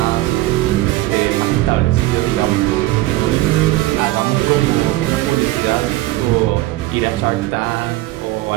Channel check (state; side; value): quieter; left; 17.6 dB